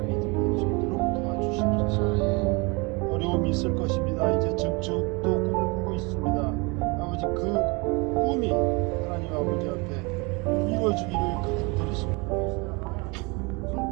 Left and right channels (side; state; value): left; quieter; 28.3 dB